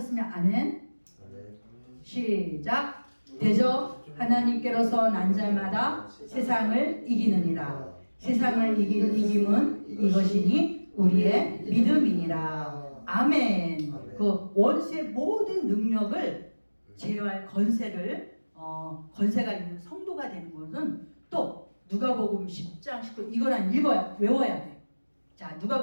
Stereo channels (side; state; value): both; inverted; correlation -1.00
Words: 아멘. 시작. 대적 하나님께로서 난 자마다 세상을 이기느니라. 세상을 이긴 이김은 이것이니 우리의 믿음이니라. 아멘. 그 원수의 모든 능력을 제어할 권세가 있는 성도가 되는 것은 또 누가복음 10장 19 이거는 외워야 돼. 자,